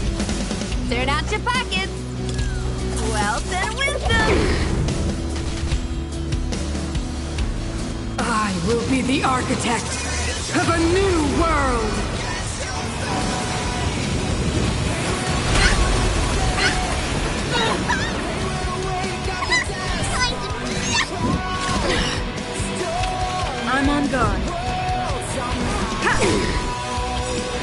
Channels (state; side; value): identical; both; correlation 1.00